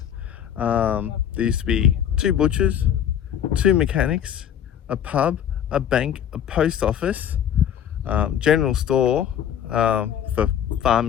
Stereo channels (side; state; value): right; quieter; 9.5 dB